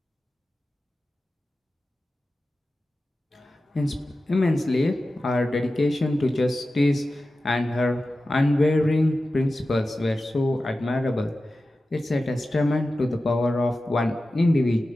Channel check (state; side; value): normal; both; correlation 0.94